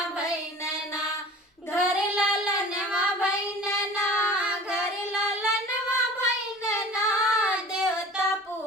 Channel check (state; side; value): normal; both; correlation 0.41